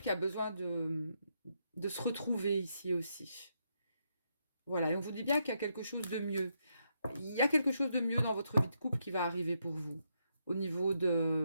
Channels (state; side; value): inverted; both; correlation -0.80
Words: qui a besoin de se retrouver ici aussi. Voilà, et on vous dit bien qu'il y a quelque chose de mieux. Il y a quelque chose de mieux dans votre vie de couple qui va arriver pour vous. Au niveau